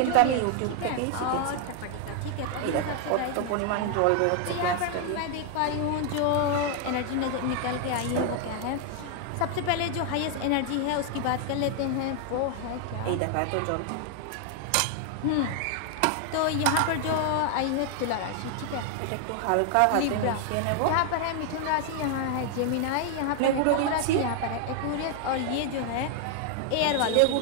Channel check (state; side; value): different; both; correlation 0.00